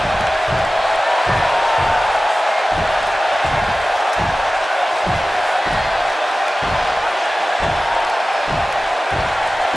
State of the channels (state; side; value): normal; both; correlation 0.96